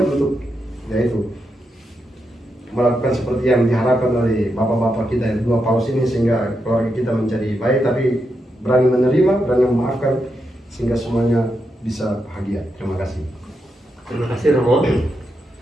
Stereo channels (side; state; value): both; normal; correlation 0.84